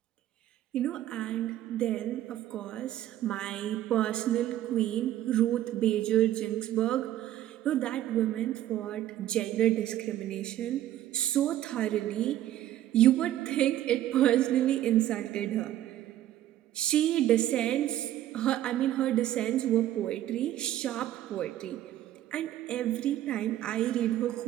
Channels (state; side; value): quieter; left; 13.0 dB